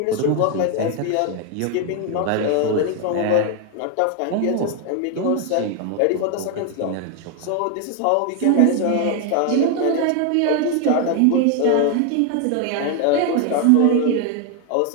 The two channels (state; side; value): different; both; correlation 0.01